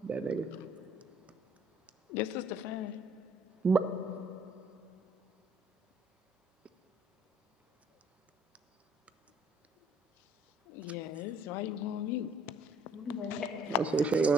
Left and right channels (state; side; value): normal; both; correlation 0.61